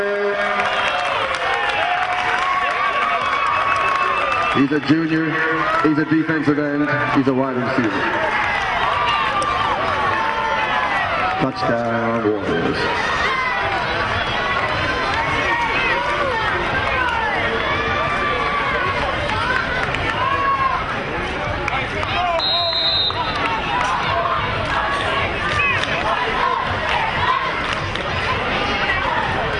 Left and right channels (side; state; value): both; identical; correlation 1.00